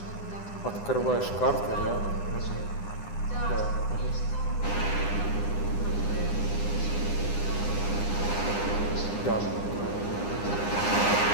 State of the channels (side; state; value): right; late; 9.8 ms